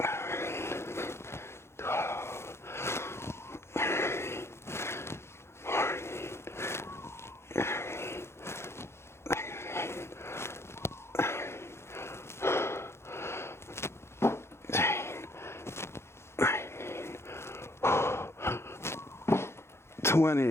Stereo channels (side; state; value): right; late; 0.13 ms